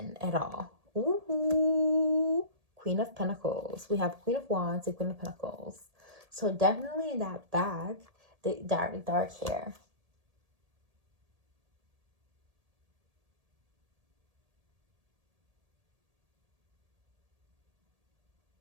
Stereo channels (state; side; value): late; left; 1.8 ms